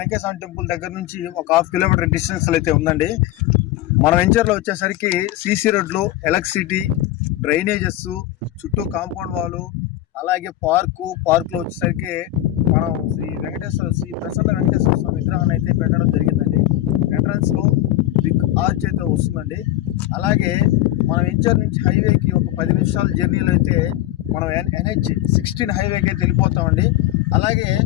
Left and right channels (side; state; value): right; quieter; 14.5 dB